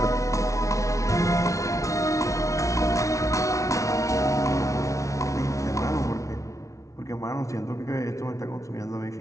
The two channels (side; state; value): right; late; 0.15 ms